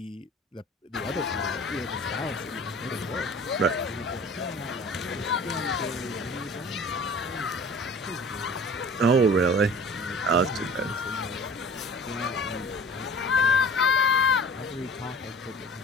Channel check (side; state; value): both; normal; correlation 0.44